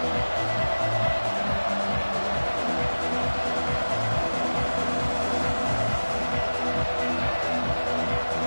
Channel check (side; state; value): both; inverted; correlation -1.00